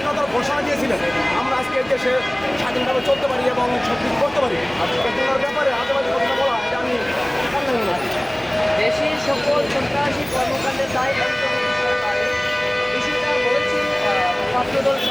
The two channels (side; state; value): right; noise; rumble, 25 dB below the sound